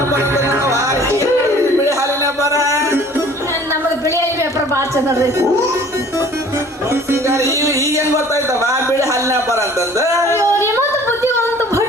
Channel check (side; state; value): both; normal; correlation 0.50